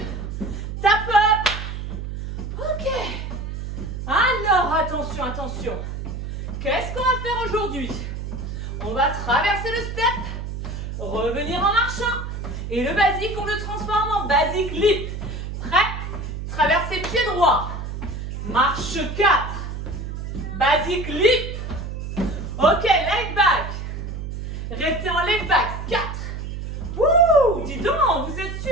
Tap up. Ok. Alors, attention, attention. Qu'est-ce qu'on va faire aujourd'hui? On va traverser le step, revenir en marchant. Et le basique, on le transforme en basique lip. Prêt? Traverser pied droit. Marche 4. Basique lip. Ok, leg back. Restez en leg back. 4. Wouh, dis donc, vous êtes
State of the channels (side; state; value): right; noise; hum, 6 dB below the sound